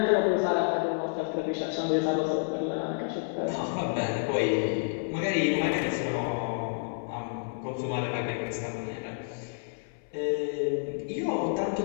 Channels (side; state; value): right; silent; 58 dB below the other